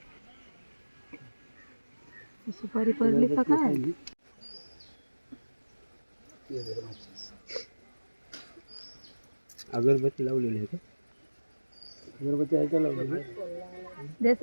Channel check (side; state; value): both; inverted; correlation -1.00